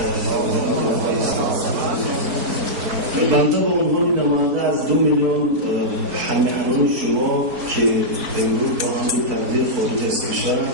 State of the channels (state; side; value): late; left; 4.6 ms